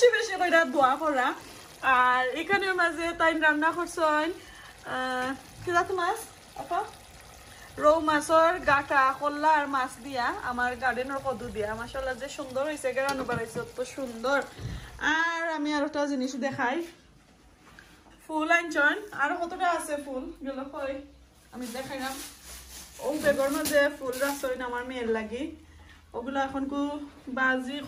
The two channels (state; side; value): identical; both; correlation 1.00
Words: বেশি কইরা দোয়া করা আর এখানের মাঝে তাই রান্না করছেন কি জাত মাছ আপা রৌ মাছের গাটা কল্লা আর মাছ দিয়া আমার গার্ডেনের কদু দিয়া মাশাআল্লাহ যে সুন্দর হয়েছে রান্না বাড়াইছে তো সুন্দর আর আমি আর একটা জিনিস দেখাই ফুল আনছেন আর কতটা আছে ফুল গেল কই আমি দেখাইলাম ও বেগর মাঝে ফুল রাখছেন আমার মেয়ের লাগি ওগুলো এখন কু বাজি